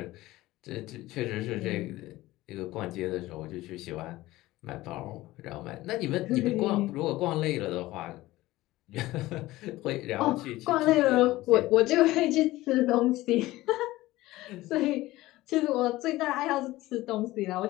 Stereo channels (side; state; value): right; quieter; 17.7 dB